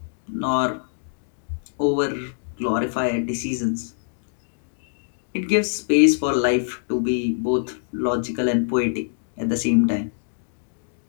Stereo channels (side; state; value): right; silent; digital silence